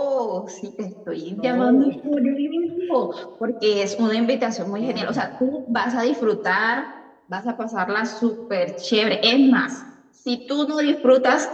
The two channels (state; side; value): identical; both; correlation 1.00